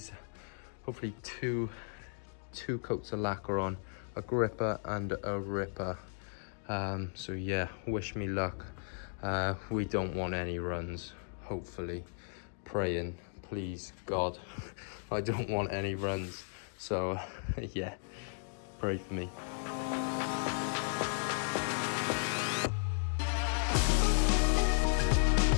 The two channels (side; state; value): right; silent; digital silence